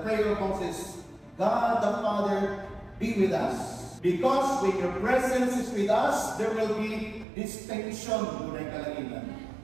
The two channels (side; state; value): left; drops out; at 7.2 s